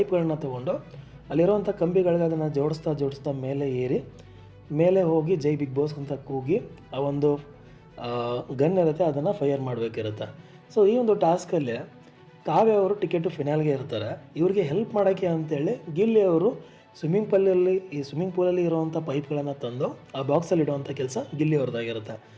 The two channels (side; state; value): both; identical; correlation 1.00